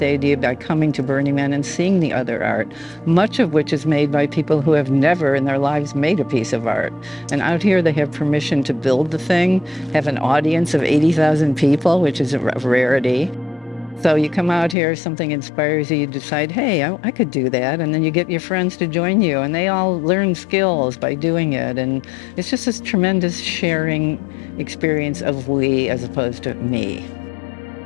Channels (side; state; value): right; drops out; at 14.8 s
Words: idea by coming to Burning Man and seeing the other art, much of which is made by people who have never in their lives made a piece of art. And out here they have permission to build the thing, have an audience of 80,000 people, which is a rarity. So you come out here, something inspires you, you decide, hey, I could do that. And then you get your friends to join you, and they all learn skills by doing it. And it's just this tremendous sharing experience of we as opposed to me.